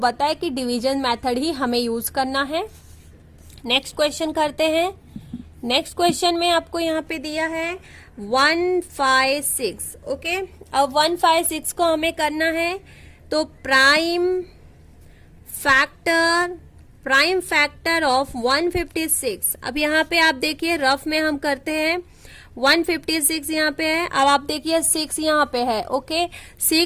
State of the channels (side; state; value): both; identical; correlation 1.00